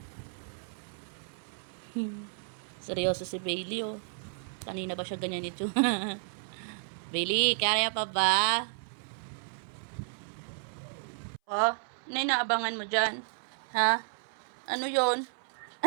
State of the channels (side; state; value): left; silent; 56 dB below the other